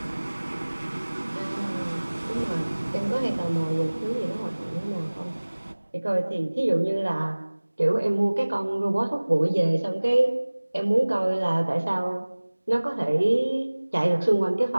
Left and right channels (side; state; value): both; inverted; correlation -1.00